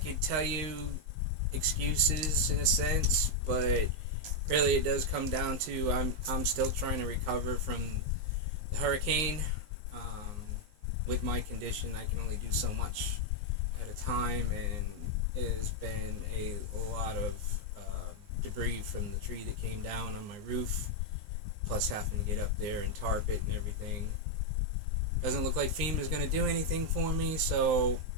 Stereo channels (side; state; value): left; late; 19 ms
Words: tell you excuses in a sense, but really it does come down to I'm still trying to recover from the hurricane. Um, with my condition, I can only do so much at a time, and it has been a lot of debris from the tree that came down on my roof, plus having to get up there and tarp it and everything. Doesn't look like FEMA is going to do anything for me, so